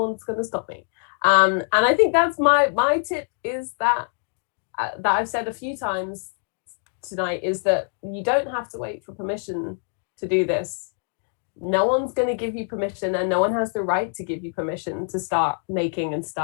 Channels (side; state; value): right; silent; 56 dB below the other